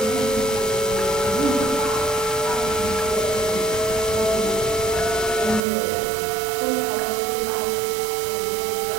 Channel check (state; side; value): drops out; left; at 5.7 s